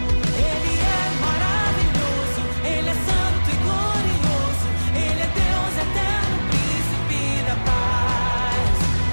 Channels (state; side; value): inverted; both; correlation -1.00